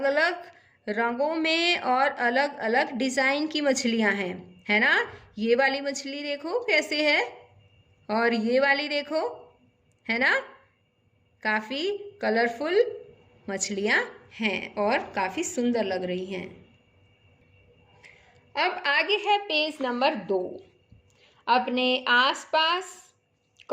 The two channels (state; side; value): identical; both; correlation 1.00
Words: अलग रंगों में और अलग अलग डिज़ाइन की मछलियां हैं, है ना। ये वाली मछली देखो कैसे है और ये वाली देखो, है ना। काफ़ी कलरफुल मछलियां हैं और काफ़ी सुंदर लग रही हैं। अब आगे है पेज नंबर 2। अपने आसपास